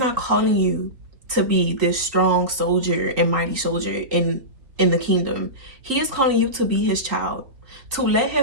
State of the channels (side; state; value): left; late; 3.8 ms